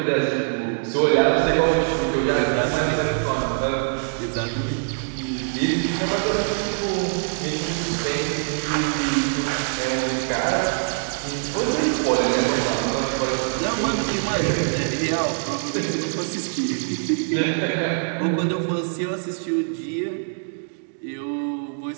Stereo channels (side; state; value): left; silent; digital silence